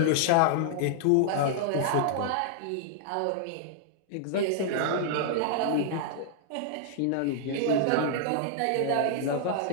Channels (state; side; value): different; both; correlation -0.01